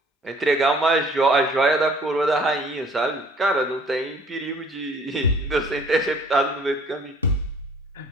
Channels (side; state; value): both; normal; correlation 0.55